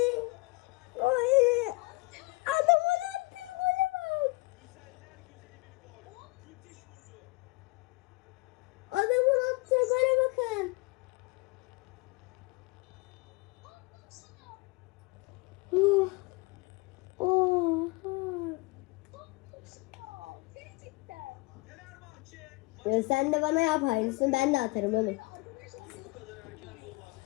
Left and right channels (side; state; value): right; quieter; 24.1 dB